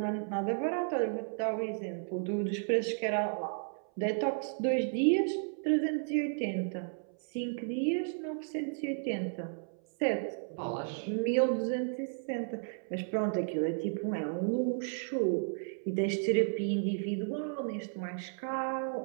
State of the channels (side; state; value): left; silent; 55 dB below the other